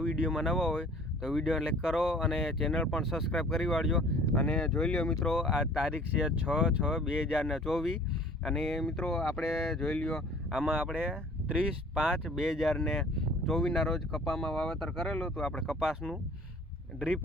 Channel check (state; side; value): normal; both; correlation 0.50